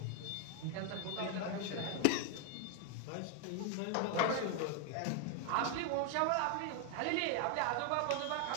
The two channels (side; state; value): both; different; correlation 0.00